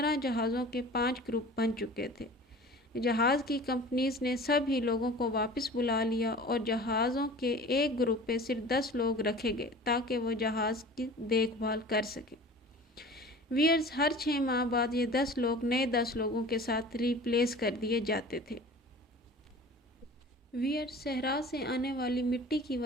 جہازوں کے 5 گروپ بن چکے تھے۔ جہاز کی کمپنیز نے سب ہی لوگوں کو واپس بلا لیا اور جہازوں کے ایک گروپ پہ صرف 10 لوگ رکھے گئے تاکہ وہ جہاز کی دیکھ بھال کر سکیں۔ ویئرز، ہر 6 ماہ بعد یہ 10 لوگ نئے 10 لوگوں کے ساتھ ریپلیس کر دیے جاتے تھے۔ ویئرز، صحرا سے آنے والی مٹی کی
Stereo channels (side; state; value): both; normal; correlation 0.41